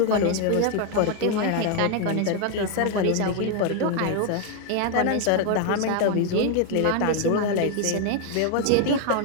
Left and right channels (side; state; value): both; different; correlation 0.00